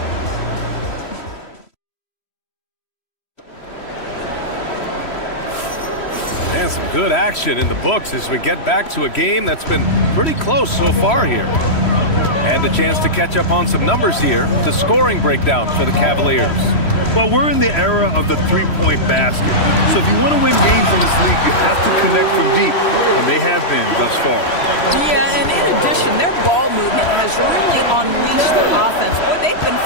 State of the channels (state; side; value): late; right; 3.1 ms